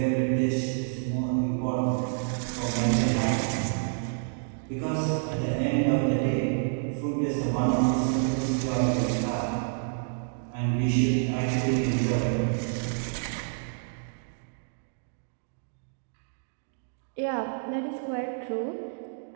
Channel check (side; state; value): left; silent; digital silence